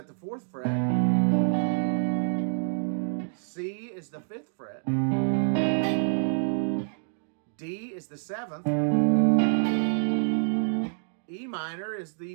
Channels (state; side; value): silent; left; 60 dB below the other